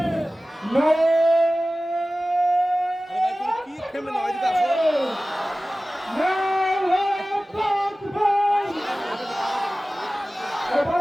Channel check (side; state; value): both; normal; correlation 0.97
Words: কি থেমে না এদিকে আসো।